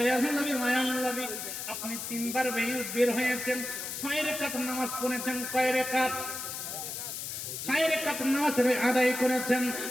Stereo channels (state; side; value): noise; left; hiss, 6 dB below the sound